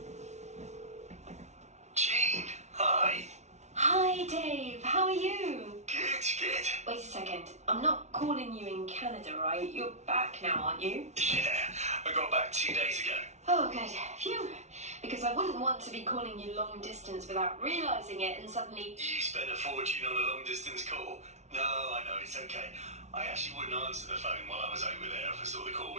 Jean, hi. Hi Dave, how are you? Good. Wait a second, I'm not calling you in Canada, right? You're back now, aren't you? Yeah, I got back 2 days ago. Oh good, phew. because I wouldn't want to be calling you long distance without realising it and suddenly. You spent a fortune on a long distance call. No, I know, it's okay. I actually wouldn't answer the phone while I was over there if I saw the call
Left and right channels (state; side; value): late; left; 0.32 ms